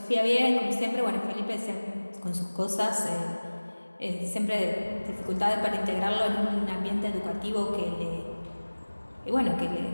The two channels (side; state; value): both; inverted; correlation -1.00